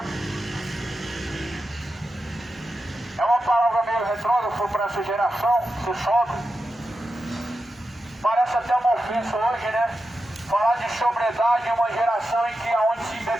É uma palavra meio retrógrada para essa geração, ser sóbrio. Parece até uma ofensa hoje, né? Falar de sobriedade em uma geração em que onde se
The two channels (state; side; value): normal; both; correlation 0.90